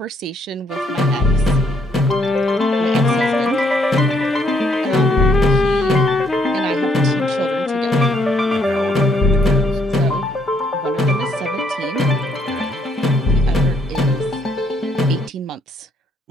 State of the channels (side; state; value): both; normal; correlation 0.70